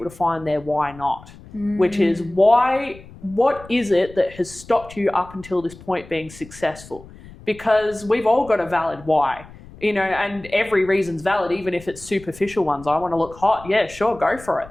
to find their why not, which is what is it that has stopped you up until this point being successful? Because we've all got a valid why. You know, and every reason's valid, even if it's superficial ones. I want to look hot. Yeah, sure, go for it.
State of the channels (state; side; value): noise; left; rumble, 19 dB below the sound